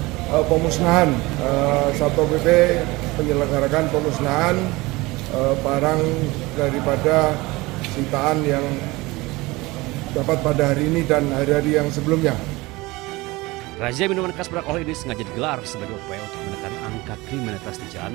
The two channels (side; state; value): left; quieter; 21.8 dB